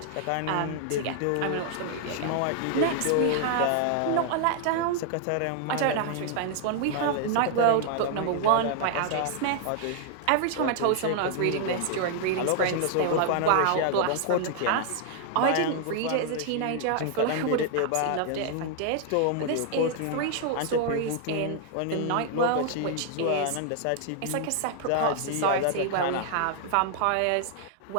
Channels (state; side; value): different; both; correlation 0.00